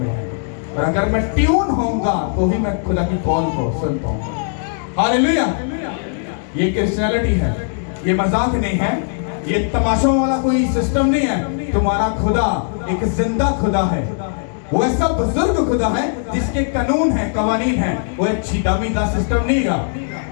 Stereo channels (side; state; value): right; silent; digital silence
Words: है। और अगर मैं ट्यून होऊंगा तो ही मैं खुदा की कॉल को सुन पाऊंगा। हालेलुया। ये क्रिश्चियनिटी है, ये मजाक नहीं है, ये तमाशों वाला कोई सिस्टम नहीं है। तुम्हारा खुदा एक जिंदा खुदा है, वो ऐसा बुजुर्ग खुदा है जिसके कानून है, कवानीन है। वो एक छीटामी का सिस्टम नहीं है।